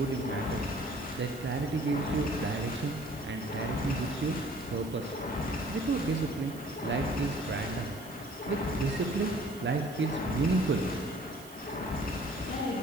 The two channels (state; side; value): noise; right; hiss, 19 dB below the sound